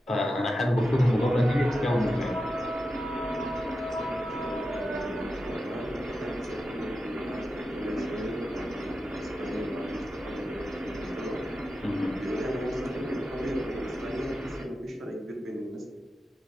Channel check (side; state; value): both; normal; correlation 0.90